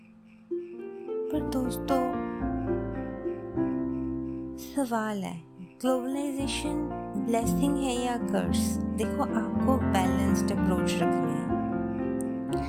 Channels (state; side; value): identical; both; correlation 1.00